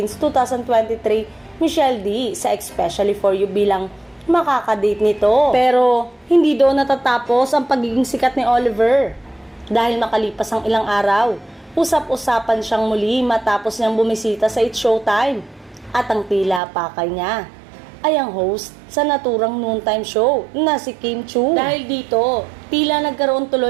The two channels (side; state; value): left; drops out; at 16.6 s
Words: 2023 Michelle D sa Especially for You bilang makakadate nito. Pero hindi doon natatapos ang pagiging sikat ni Oliver. Dahil makalipas ang ilang araw, usap-usapan siyang muli matapos niyang bumisita sa It's Showtime. At ang tila pakay niya ay ang host sa naturang noontime show na si Kim Chiu. Dahil dito, tila nagkaroon